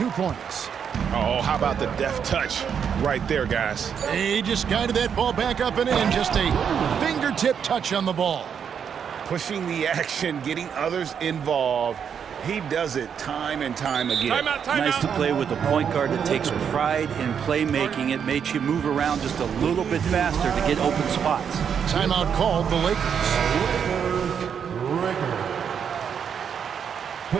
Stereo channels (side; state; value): left; quieter; 7.5 dB